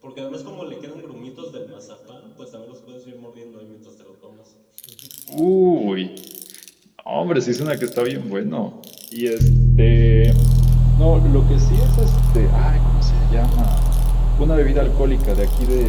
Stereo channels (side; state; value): both; identical; correlation 1.00